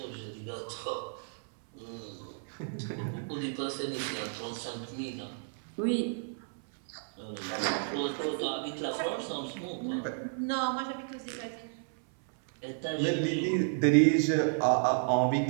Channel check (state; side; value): silent; left; 56 dB below the other